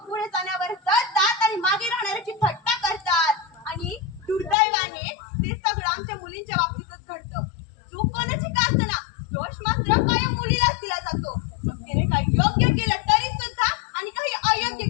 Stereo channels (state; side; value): drops out; right; at 4.5 s